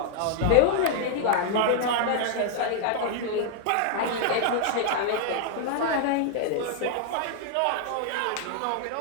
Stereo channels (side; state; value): both; different; correlation 0.00